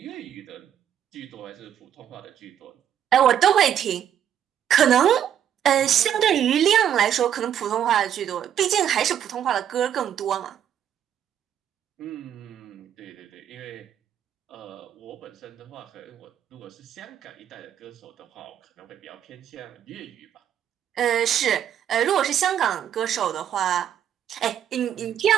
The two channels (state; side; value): quieter; left; 9.7 dB